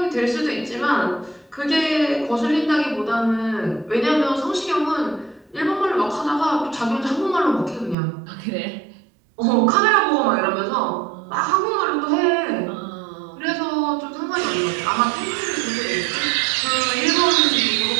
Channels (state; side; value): drops out; left; at 8.0 s